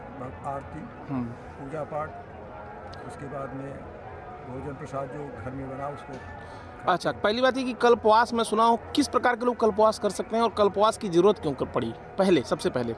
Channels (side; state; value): both; identical; correlation 1.00